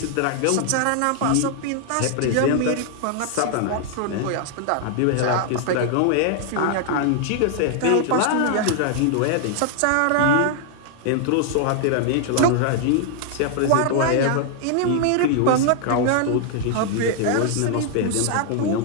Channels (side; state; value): both; different; correlation 0.00